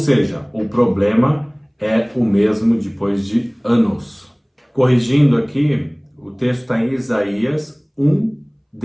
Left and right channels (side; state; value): both; identical; correlation 1.00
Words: o problema é o mesmo depois de anos. Corrigindo aqui, o texto está em Isaías